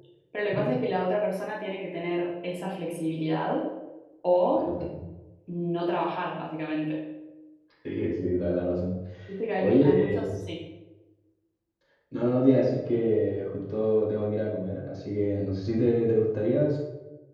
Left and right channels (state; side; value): identical; both; correlation 1.00